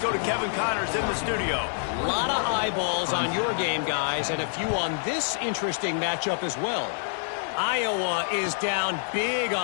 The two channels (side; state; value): right; silent; digital silence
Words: to Kevin Connors in the studio. A lot of eyeballs on your game, guys, and a few on this interesting matchup as well. Iowa is down big